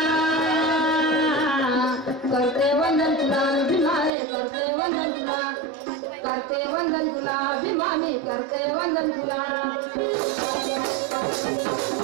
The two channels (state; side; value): drops out; left; at 4.1 s